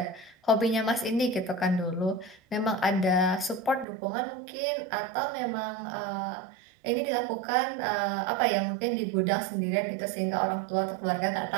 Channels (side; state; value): left; drops out; at 3.9 s